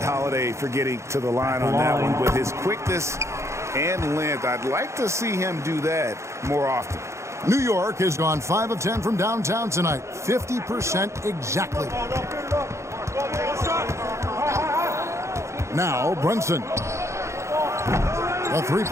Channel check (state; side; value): late; left; 0.14 ms